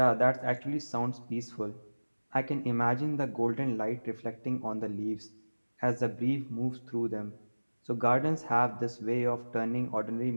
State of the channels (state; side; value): inverted; both; correlation -1.00